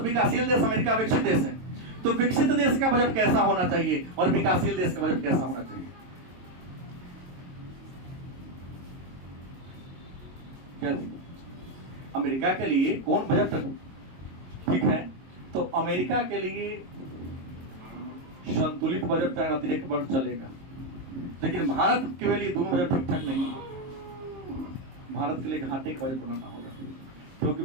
देश, अमेरिका विकसित देश है। तो विकसित देश का बजट कैसा होना चाहिए और विकासशील देश का बजट कैसा होना चाहिए? क्या अमेरिका के लिए कौन बजट ठीक है? तो अमेरिका के लिए संतुलित बजट का अतिरिक्त बजट चलेगा, लेकिन भारत के लिए दोनों बजट ठीक ठाक नहीं है। भारत के लिए घाटे का बजट बनाना होगा, क्योंकि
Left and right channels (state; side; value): late; left; 23 ms